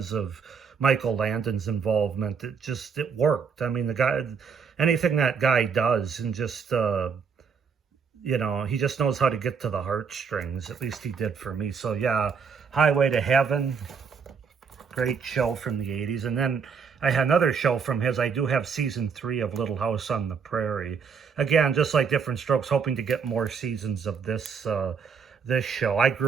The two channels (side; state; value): left; quieter; 6.0 dB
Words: of Michael Landon's involvement, it worked. I mean, the guy, anything that guy does, and just, you know, he just knows how to get to the heartstrings. At least he did for me. So yeah, Highway to Heaven, great show from the 80s. And then I had another show from his. I do have season 3 of Little House on the Prairie. Again, just like Different Strokes, hoping to get more seasons of this this show. I